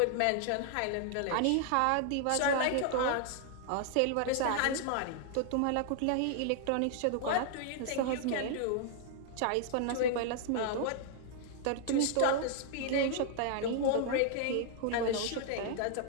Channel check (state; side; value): different; both; correlation 0.00